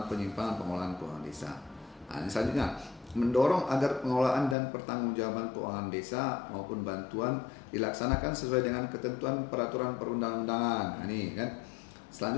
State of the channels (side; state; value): right; drops out; at 4.5 s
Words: penyimpangan pengelolaan keuangan desa. Nah, ini selanjutnya mendorong agar pengelolaan dan pertanggungjawaban keuangan desa maupun bantuan dilaksanakan sesuai dengan ketentuan peraturan perundang-undangan. Nah, ini kan.